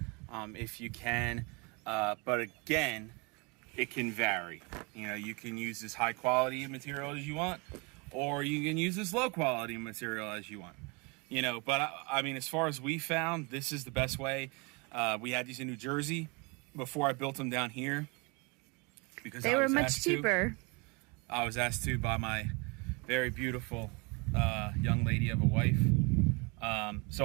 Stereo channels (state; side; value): quieter; left; 29.7 dB